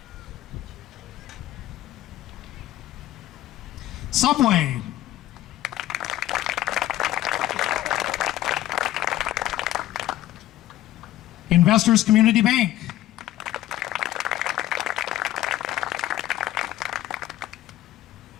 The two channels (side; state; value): right; quieter; 14.3 dB